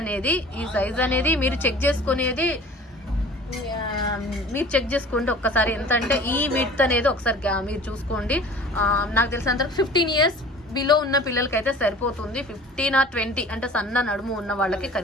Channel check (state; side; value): normal; both; correlation 0.44